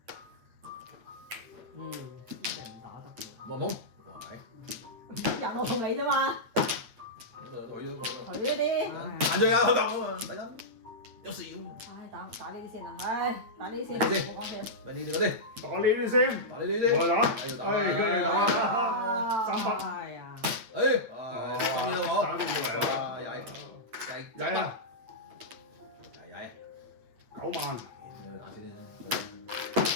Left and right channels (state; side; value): late; left; 8.8 ms